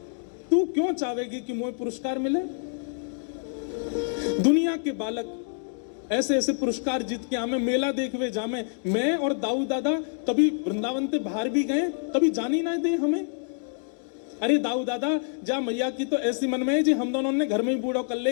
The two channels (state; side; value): silent; right; 57 dB below the other